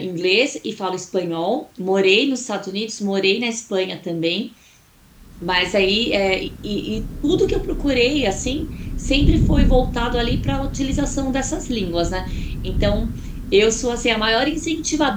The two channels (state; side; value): identical; both; correlation 1.00